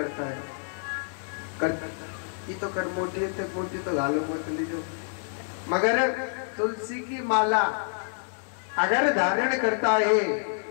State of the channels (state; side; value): silent; right; 60 dB below the other